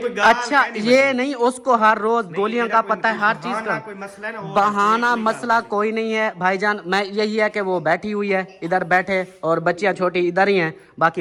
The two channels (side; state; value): both; identical; correlation 1.00